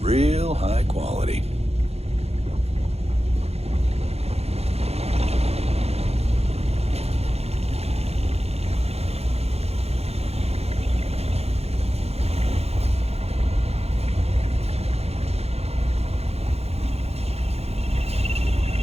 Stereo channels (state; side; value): late; left; 0.30 ms